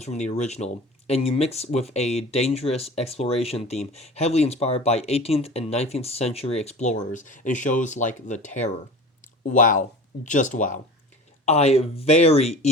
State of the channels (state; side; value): normal; both; correlation 0.37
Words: from the original and you mix with a dangerous exploration theme heavily inspired by 18th and 19th century explorers in shows like The Terror. Wow, just wow. I very